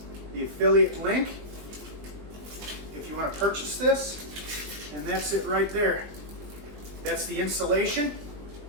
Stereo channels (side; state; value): left; late; 20 ms